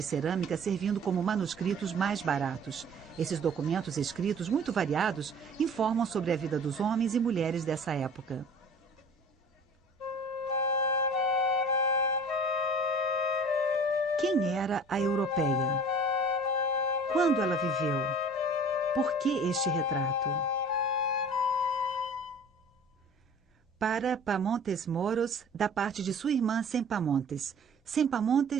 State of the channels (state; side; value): normal; both; correlation 0.45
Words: cerâmica servindo como manuscritos mais baratos. Esses documentos escritos, muito variados, informam sobre a vida dos homens e mulheres dessa época. Quem era a Europeia? Quando ela viveu? Por que este retrato? Para Pamontes Moros, da parte de sua irmã Sempamontes.